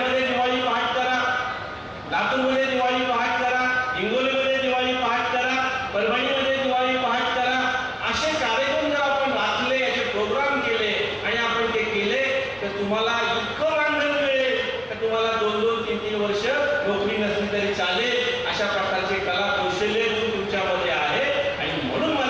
दिवाळी पहाट करा, लातूरमध्ये दिवाळी पहाट करा, हिंगोलीमध्ये दिवाळी पहाट करा, परभणीमध्ये दिवाळी पहाट करा. असे कार्यक्रम जर आपण राखले, याचे प्रोग्राम केले आणि आपण ते केले, तर तुम्हाला इतकं मानधन मिळेल तर तुम्हाला 2-2, 3-3 वर्ष नोकरी नसली तरी चालेल. अशा प्रकारचे कला, कौशल्य तुमच्यामध्ये आहे. आणि म्हणून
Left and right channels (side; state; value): both; identical; correlation 1.00